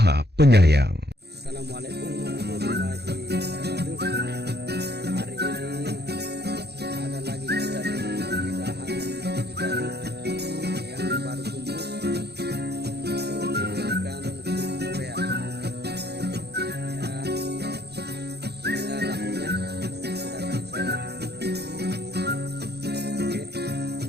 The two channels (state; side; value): late; left; 0.48 ms